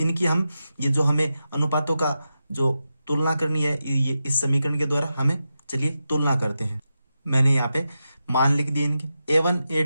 हम ये जो हमें अनुपातों का जो तुलना करनी है, ये इस समीकरण के द्वारा हमें, चलिए तुलना करते हैं। मैंने यहाँ पे मान लिख दिए इनके। a1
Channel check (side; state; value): both; inverted; correlation -0.90